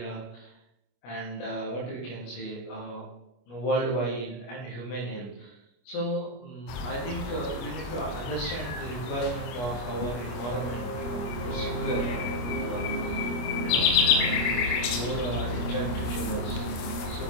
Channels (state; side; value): late; right; 25 ms